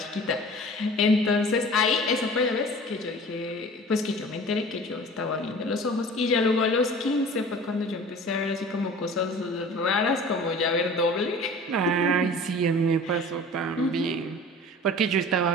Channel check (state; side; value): normal; both; correlation 0.42